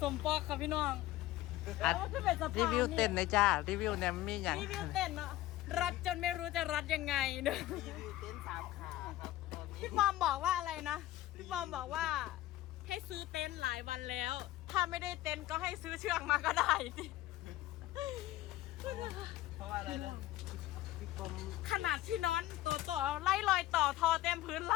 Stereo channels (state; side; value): quieter; right; 15.6 dB